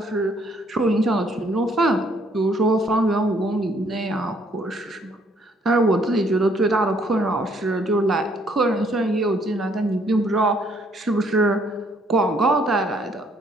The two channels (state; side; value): normal; both; correlation 0.66